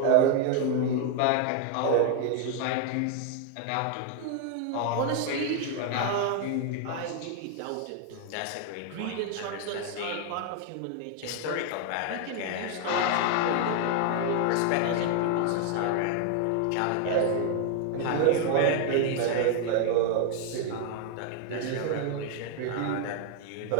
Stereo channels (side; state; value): both; different; correlation 0.00